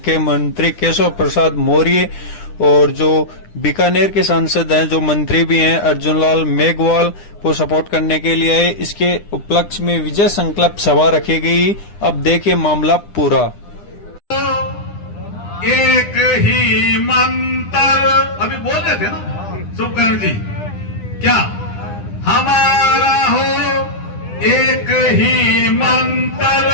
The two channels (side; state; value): right; late; 9.9 ms